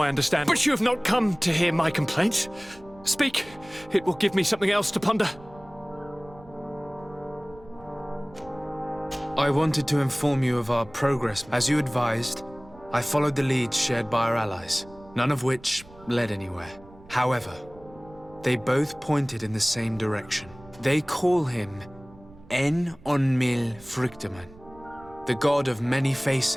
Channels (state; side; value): noise; right; rumble, 22 dB below the sound